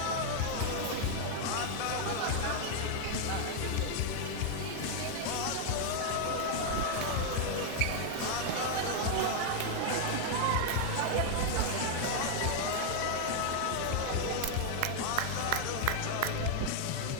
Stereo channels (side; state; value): both; different; correlation 0.00